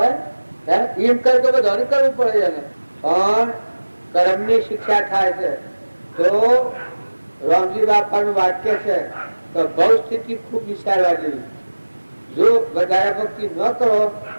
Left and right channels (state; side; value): inverted; both; correlation -1.00